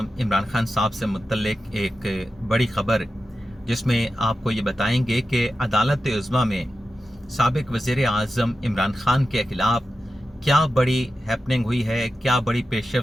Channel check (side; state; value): both; normal; correlation 0.92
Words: इमरान खान साहब से मुतल्लिक़ एक बड़ी ख़बर, जिसमें आपको ये बताएंगे कि अदालत उज़्मा में साबिक़ वज़ीर आज़म इमरान खान के ख़िलाफ़ क्या बड़ी हैपनिंग हुई है, क्या बड़ी